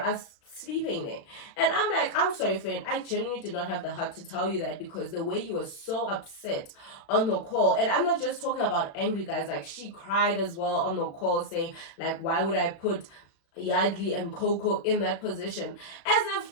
us sleeping there. And I'm like, I'm sorry, friend, I genuinely did not have the heart to tell you that, because the way you were so upset on the call, and I'm not just talking about angry, guys, like she cried as well on the call, saying like, why would I put Yardley and Coco in that position, as if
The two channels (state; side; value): late; right; 36 ms